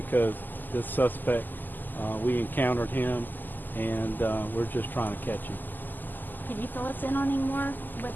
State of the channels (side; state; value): right; late; 0.088 ms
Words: this suspect, we encountered him, and we're just trying to catch him. Could you fill us in on any more with